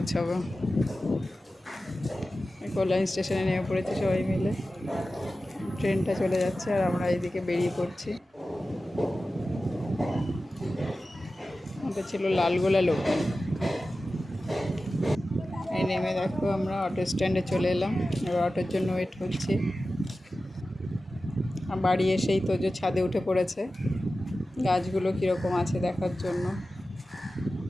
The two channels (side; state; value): both; normal; correlation 0.94